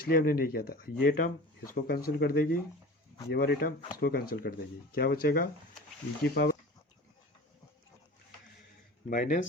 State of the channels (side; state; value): both; normal; correlation 0.37